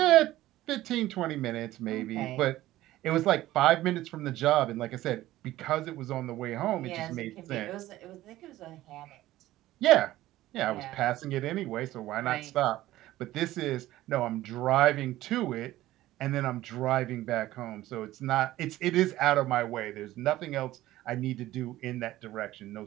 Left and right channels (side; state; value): left; quieter; 15.6 dB